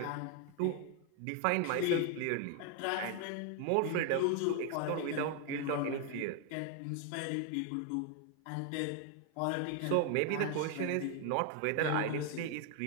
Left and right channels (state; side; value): different; both; correlation 0.01